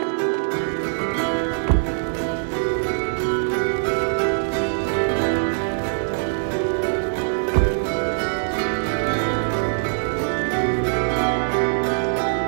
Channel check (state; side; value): silent; left; digital silence